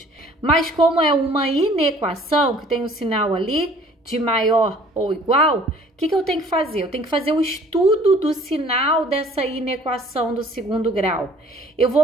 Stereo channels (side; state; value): both; normal; correlation 0.54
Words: Mas como é uma inequação, que tem o sinal ali de maior ou igual, o que eu tenho que fazer? Eu tenho que fazer o estudo do sinal dessa inequação do segundo grau. Eu